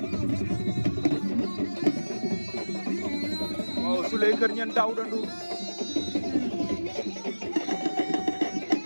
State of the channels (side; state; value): both; inverted; correlation -1.00